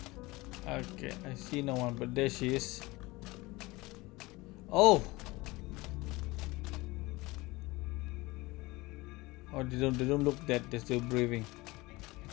Okay, I see no one, but there she is. Oh! Oh, they don't look dead, they're still breathing.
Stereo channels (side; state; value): right; quieter; 21.7 dB